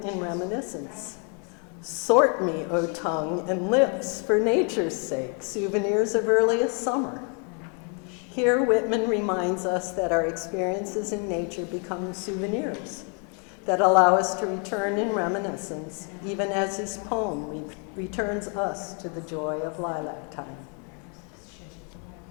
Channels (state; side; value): quieter; right; 38.5 dB